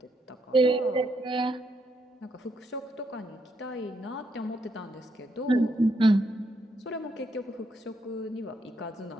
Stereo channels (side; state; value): both; normal; correlation 0.77